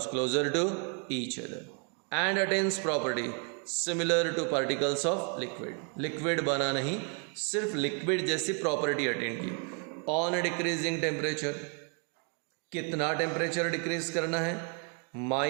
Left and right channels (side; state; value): left; quieter; 38.0 dB